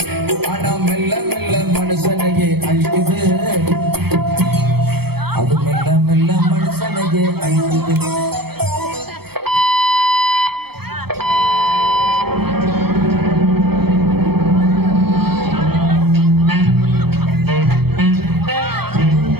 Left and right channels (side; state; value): left; late; 0.96 ms